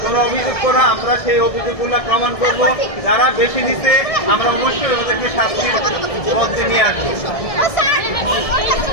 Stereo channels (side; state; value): right; late; 1.7 ms